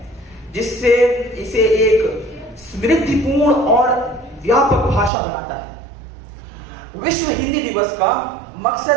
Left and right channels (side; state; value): left; drops out; at 5.1 s